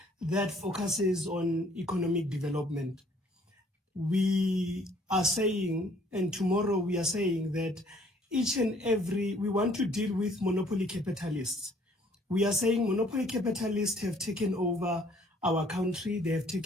that focuses on economic development. We are saying, and tomorrow we are saying that we want to deal with monopoly capitalists. We are saying monopoly capitalists have taken over our country, they have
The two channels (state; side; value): normal; both; correlation 0.60